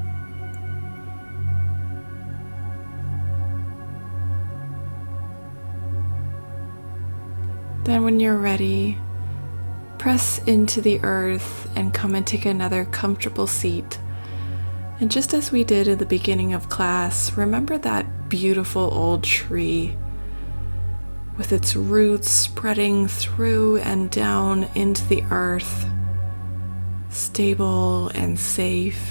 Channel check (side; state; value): both; inverted; correlation -1.00